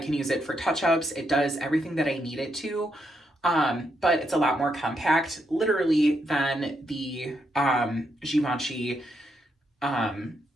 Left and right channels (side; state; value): both; normal; correlation 0.80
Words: use it for touch-ups. It does everything that I need it to, but it's a lot more compact, literally, than the Givenchy